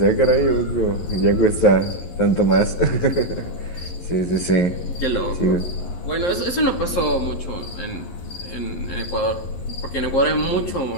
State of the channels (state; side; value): late; right; 11 ms